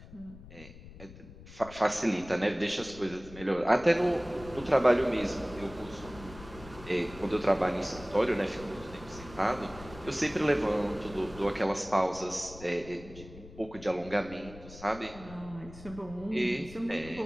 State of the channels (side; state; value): left; noise; rumble, 17 dB below the sound